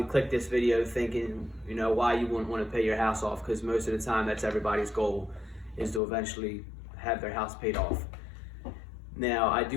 clicked this video thinking, you know, why you wouldn't want to pay your house off, because most of the time that's everybody's goal, is to eventually have their house paid off. Now, I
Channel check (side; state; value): right; drops out; at 6.0 s